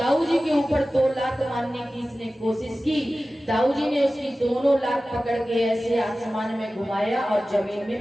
जी के ऊपर 2 लात मारने की इसने कोशिश की। दाऊ जी ने उसकी दोनों लात पकड़ के ऐसे आसमान में घुमाया और जमीन में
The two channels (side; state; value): both; normal; correlation 0.96